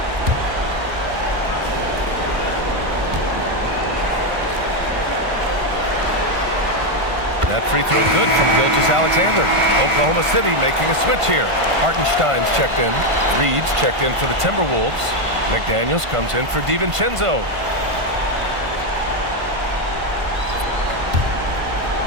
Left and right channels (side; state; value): left; late; 1.5 ms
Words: That free throw good from Gilgeous-Alexander. Oklahoma City making a switch here. Hartenstein's checked in. Reed's checked in for the Timberwolves. McDaniels comes in for DiVincenzo.